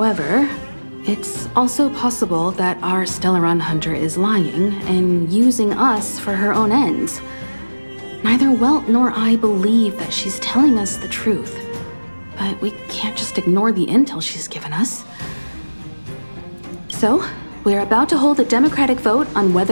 it's also possible that our Stellaron Hunter is lying and using us for her own ends. Neither Welt nor I believe that she's telling us the truth, but we can't just ignore the intel she's given us. So, we're about to hold a democratic vote on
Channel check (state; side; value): inverted; both; correlation -1.00